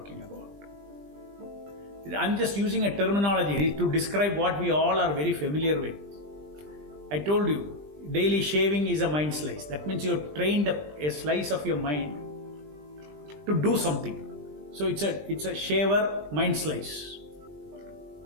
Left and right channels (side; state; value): left; late; 20 ms